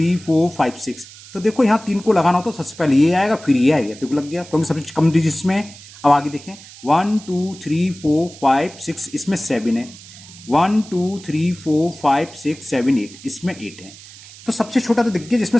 4 5 6, तो देखो यहाँ 3 को लगाना होता तो सबसे पहले ये आएगा, फिर ये आएगा, देखो लग गया, क्योंकि सबसे कम डिजिट्स में। अब आगे देखें 1 2 3 4 5 6, इसमें 7 है। 1 2 3 4 5 6 7 8, इसमें 8 है। तो सबसे छोटा तो दिख गया जिसमें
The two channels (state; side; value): noise; right; hiss, 19 dB below the sound